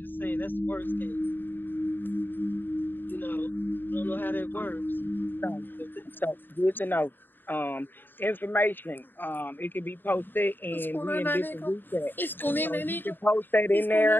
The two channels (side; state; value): right; late; 0.094 ms